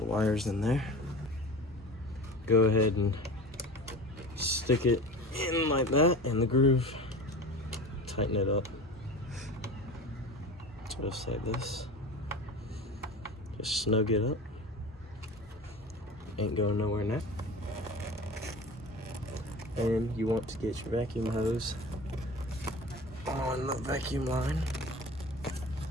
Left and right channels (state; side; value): normal; both; correlation 0.35